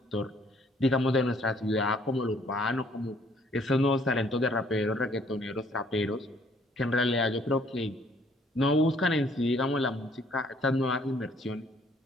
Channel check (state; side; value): normal; both; correlation 0.62